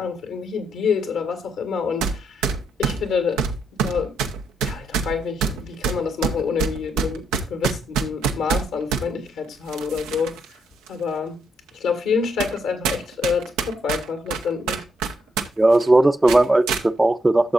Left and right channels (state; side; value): normal; both; correlation 0.78